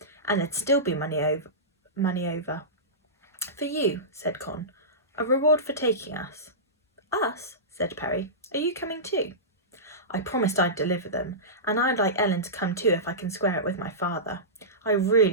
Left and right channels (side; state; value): both; normal; correlation -0.20